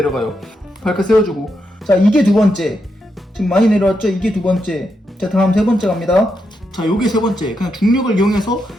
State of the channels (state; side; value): normal; both; correlation 0.83